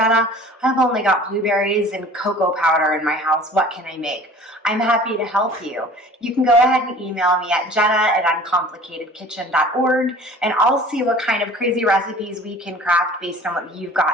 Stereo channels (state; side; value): normal; both; correlation 0.46